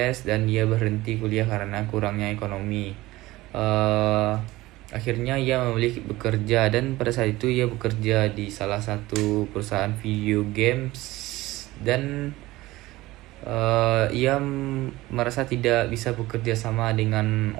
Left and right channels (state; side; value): quieter; left; 18.5 dB